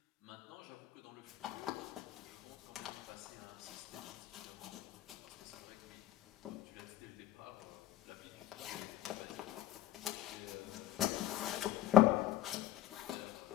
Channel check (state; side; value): quieter; right; 13.5 dB